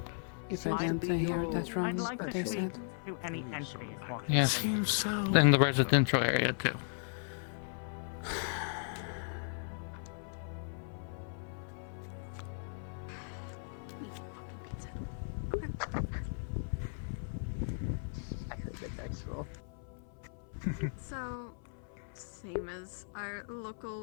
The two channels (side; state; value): right; silent; 53 dB below the other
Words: If I didn't hear that wrong, I'd like what to they speak said. to any entities walking. Yes. In the residential area too. I heard the dice roll. So, same as our